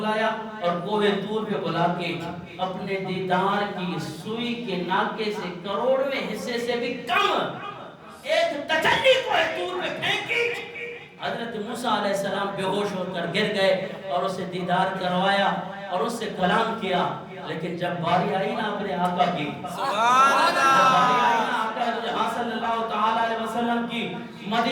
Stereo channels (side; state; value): both; identical; correlation 1.00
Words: اور کوہ طور پہ بلا کے اپنے دیدار کی سوئی کے ناکے سے کروڑویں حصے سے بھی کم ایک تجلی کوہ طور پہ پھینکی۔ حضرت موسیٰ علیہ السلام بے ہوش ہو کر گر گئے اور اسے دیدار کروایا اور اس سے کلام کیا، لیکن جب باری آئی نا اپنے آقا کی، سبحان اللہ۔ جب باری آئی نا آقا جہاں صلی اللہ تعالیٰ علیہ وسلم کی،